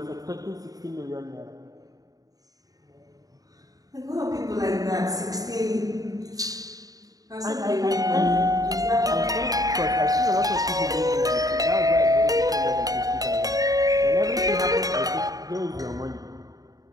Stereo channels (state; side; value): late; left; 0.18 ms